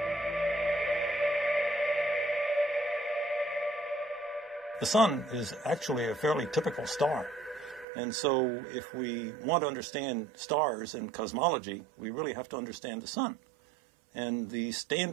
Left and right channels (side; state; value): left; drops out; at 7.9 s